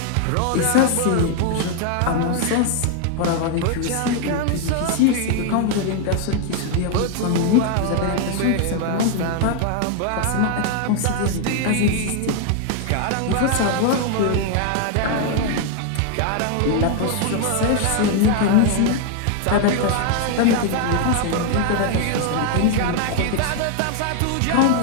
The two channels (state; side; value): different; both; correlation 0.00